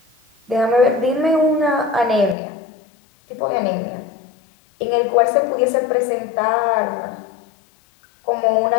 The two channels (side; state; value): right; drops out; at 2.4 s